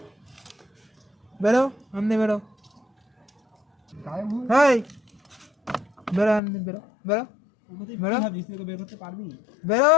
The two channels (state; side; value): drops out; right; at 6.4 s